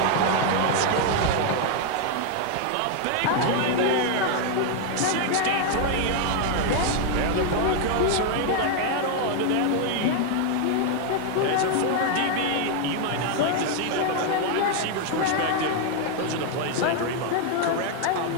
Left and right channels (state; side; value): different; both; correlation 0.00